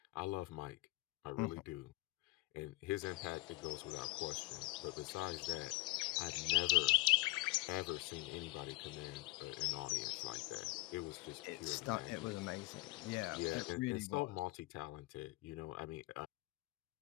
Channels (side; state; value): right; quieter; 21.4 dB